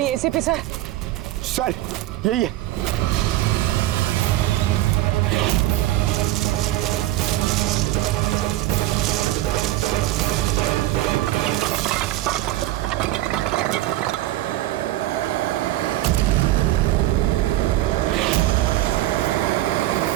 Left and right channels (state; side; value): quieter; left; 15.7 dB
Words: एसीपी सर? सर यही है।